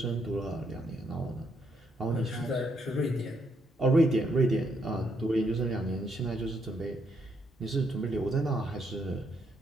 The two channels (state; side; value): normal; both; correlation 0.75